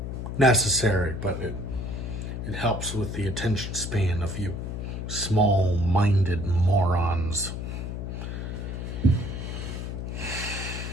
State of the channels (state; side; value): noise; left; hum, 5 dB below the sound